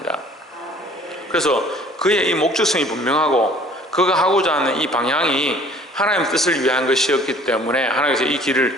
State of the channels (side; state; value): both; normal; correlation 0.53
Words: 그래서 그의 이 목적성이 분명하고 그가 하고자 하는 이 방향이 하나님 뜻을 위한 것이었기 때문에 하나님께서 이